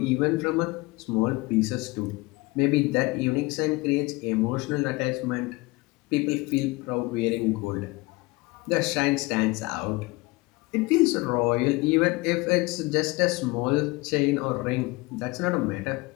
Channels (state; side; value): quieter; right; 23.0 dB